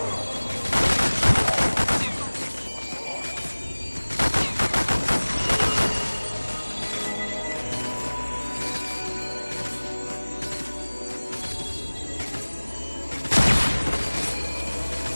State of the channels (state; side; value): inverted; both; correlation -1.00